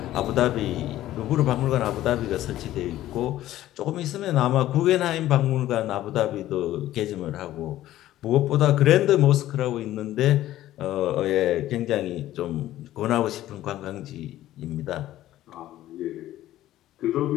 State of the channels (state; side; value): quieter; right; 14.1 dB